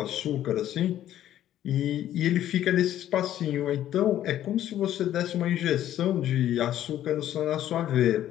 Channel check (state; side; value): quieter; right; 12.1 dB